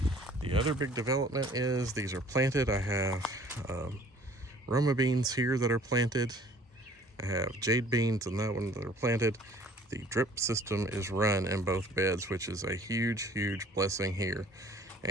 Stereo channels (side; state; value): both; normal; correlation 0.53